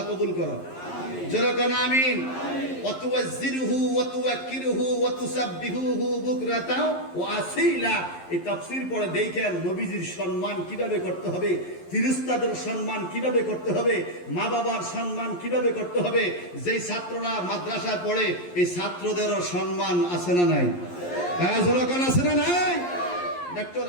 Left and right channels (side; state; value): right; late; 11 ms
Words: কবুল করো, জোরে কোন আমিন। ওয়াতুওয়াজ্জিরুহু ওয়াতুওয়াক্কিরুহু ওয়াতুসাব্বিহুহু বুকরাতা ওয়া আসীলা। এই তাফসীর পড়ে দেখেন নবীজির সম্মান কিভাবে করতে হবে, ফেরেশতাদের সম্মান কিভাবে করতে হবে, মা বাবার সম্মান কিভাবে করতে হবে। যেই ছাত্ররা মাদ্রাসায় পড়ে, এই ছাত্রদেরও সম্মান আছে না নাই? হ্যাঁ, জোরে কোন আছে না নাই? ডক্টর